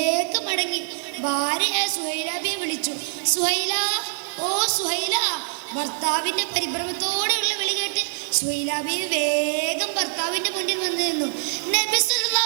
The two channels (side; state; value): left; silent; digital silence